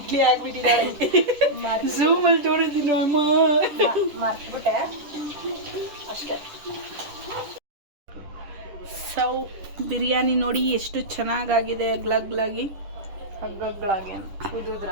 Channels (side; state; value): left; late; 10 ms